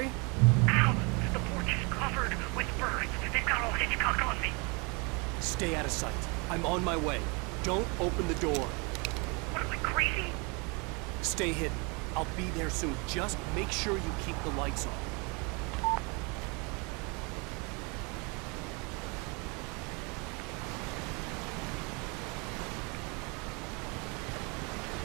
Ow! The porch is covered with birds. They've got all Hitchcock on me. Stay out of sight. I'm on my way. Don't open the door. What am I, crazy? Stay hidden. I'll be there soon. Just make sure you keep the lights on.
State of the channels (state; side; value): quieter; left; 30.4 dB